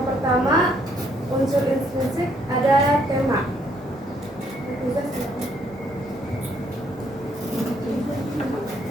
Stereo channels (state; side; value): normal; both; correlation 0.69